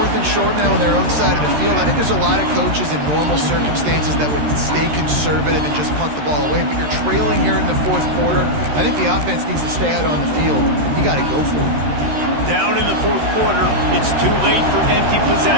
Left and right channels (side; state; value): left; late; 13 ms